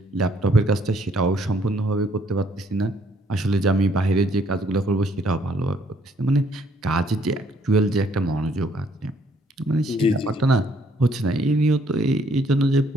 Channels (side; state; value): both; normal; correlation 0.65